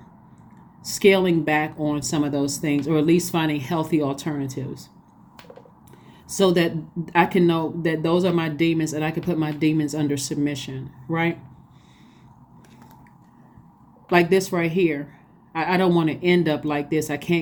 scaling back on some of those things, or at least finding healthy alternatives, so that I can know that those are my demons and I can put my demons under submission, right? Like this right here. I don't want to end up like this. I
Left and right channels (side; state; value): both; identical; correlation 1.00